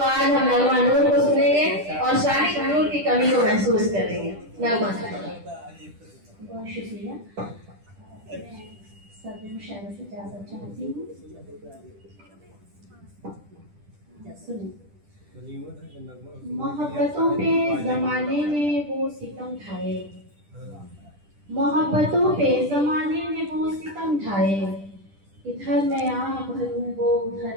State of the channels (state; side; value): late; left; 10 ms